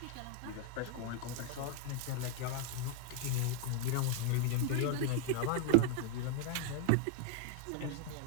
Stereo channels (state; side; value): different; both; correlation 0.00